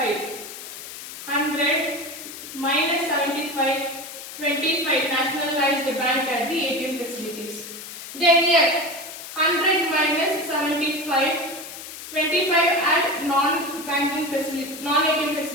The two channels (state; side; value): noise; left; hiss, 12 dB below the sound